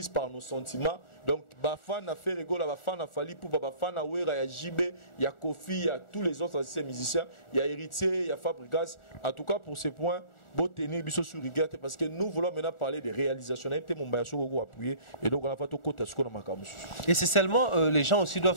par nos sentiments. Donc Bafan a fait rigolo, Bafan a fallu pour Bafan a Wera, il y a JB, il y a Kofi, il y a tous les autres musiciens, il y a Héritier, il y a Fabrigas. En tout cas pour ces points. Parce que nous voulons maintenant parler des réalisations. Et c'est seulement les gens aussi doivent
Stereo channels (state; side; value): late; right; 1.4 ms